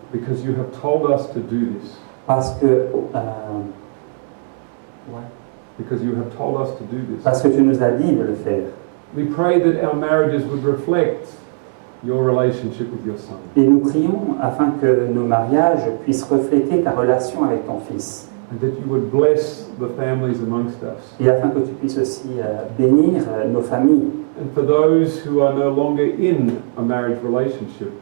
because you have told us to do this. parce que, Because you have told us to do this. parce que tu nous as dit de le faire. We pray that our marriages would reflect your relationship with your Son. Et nous prions afin que nos mariages puissent refléter ta relation avec ton Fils. And that you would bless the families amongst us. Et afin que tu puisses aussi bénir nos familles. And for those who are no longer in a marriage relationship,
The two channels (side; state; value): left; silent; digital silence